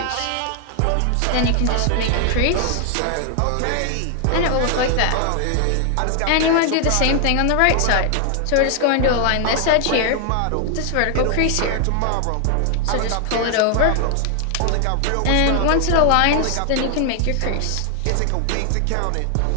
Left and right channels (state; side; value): different; both; correlation 0.00